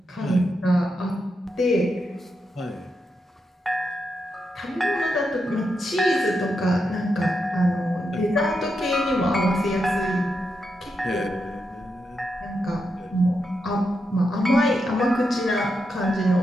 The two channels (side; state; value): both; normal; correlation 0.85